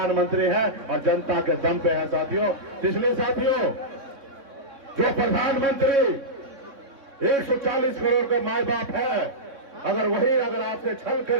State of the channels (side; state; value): left; late; 3.6 ms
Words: हैं और जनता के दम पे है साथियों। इसलिए साथियों, जो प्रधानमंत्री 140 करोड़ का माए बाप है, अगर आपसे छल